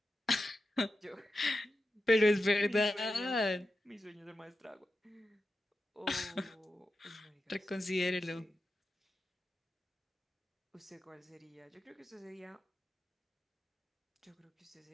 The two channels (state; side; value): normal; both; correlation 0.90